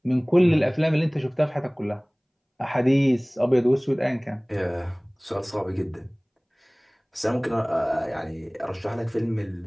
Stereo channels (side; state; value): both; identical; correlation 1.00